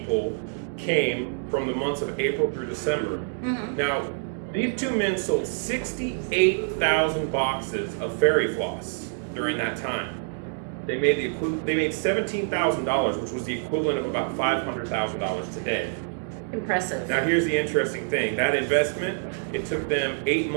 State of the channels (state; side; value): silent; left; digital silence